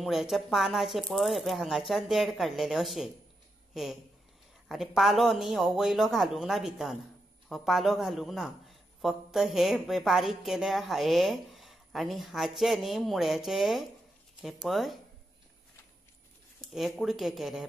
पानाचे पळय हे पळय हांगाच्यान देड काडलेले अशे हे आनी पालो न्ही हो वयलो घालूंक ना भितर, हो पालो घालूंक ना, फक्त हे बारीक केले हे आनी हाचे न्ही मुळ्याचे हे पळय हे कुडके केले हे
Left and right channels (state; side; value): normal; both; correlation 0.85